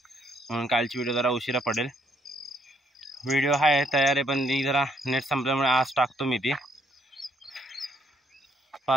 म्हणून कालची व्हिडिओ जरा उशिरा पडेल। व्हिडिओ आहे तयार आहे, पण ती जरा नेट संपल्यामुळे आज टाकतो मी ती।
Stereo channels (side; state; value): both; normal; correlation 0.69